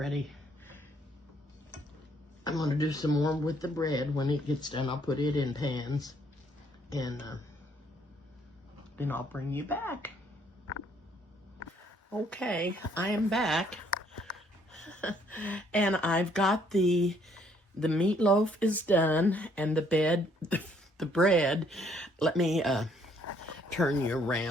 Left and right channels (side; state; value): both; normal; correlation 0.66